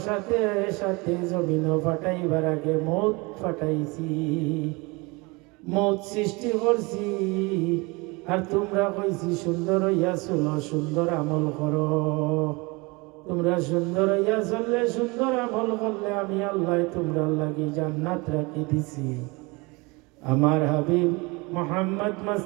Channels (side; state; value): left; quieter; 26.3 dB